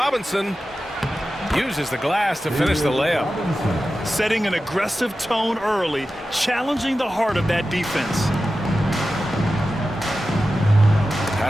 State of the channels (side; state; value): both; normal; correlation 0.93